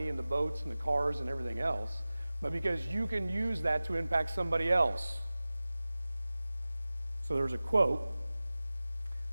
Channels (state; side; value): inverted; both; correlation -0.97